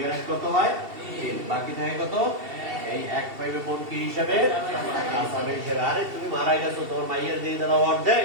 এর 1 কত হয়? 3। বাকি থাকে কত? এই 1 পাইবে বোন কি হিসাবে? আসাবে হিসাবে। আরে তুমি মারা গেছো, তোমার মাইয়ের দিয়ে দিলাম অর্ধেক,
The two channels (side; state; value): left; late; 2.7 ms